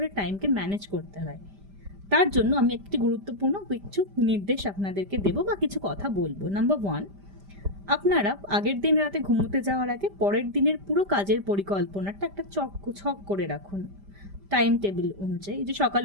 টাইমকে ম্যানেজ করতে হয়। তার জন্য আমি একটি গুরুত্বপূর্ণ কিছু নির্দেশ আপনাদেরকে দেবো বা কিছু কথা বলবো। নাম্বার 1, আপনারা আগের দিন রাতে ঘুমোতে যাওয়ার আগে পরের দিনের পুরো কাজের পরিকল্পনাটা একটা ছক করে রাখুন, টাইম টেবিল অনুযায়ী, যে সকাল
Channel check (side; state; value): left; late; 5.1 ms